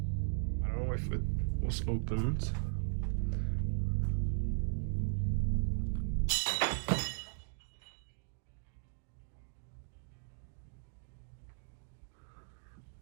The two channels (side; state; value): left; silent; digital silence